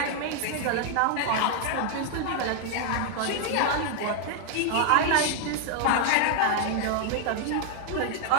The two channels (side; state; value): both; different; correlation 0.00